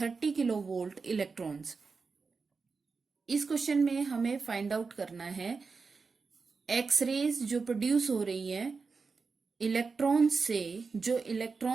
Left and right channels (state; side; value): quieter; left; 4.7 dB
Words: 30 kilovolt electrons. इस क्वेश्चन में हमें फाइंड आउट करना है एक्स रेज जो प्रोड्यूस हो रही है इलेक्ट्रॉन्स से, जो